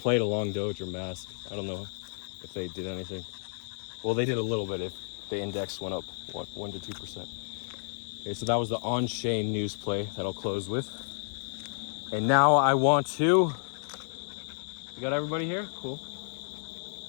to long Doge or Mask. I don't know if they did anything. Well, they did a little bit if the index went up 1 to 2%. Okay, so that was the on-chain news play that I'll close with. And now I want to... You got everybody here? Cool.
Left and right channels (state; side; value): silent; right; digital silence